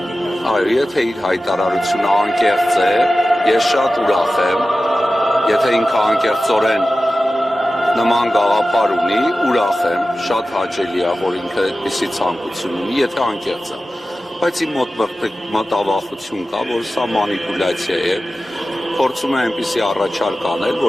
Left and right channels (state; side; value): normal; both; correlation 0.95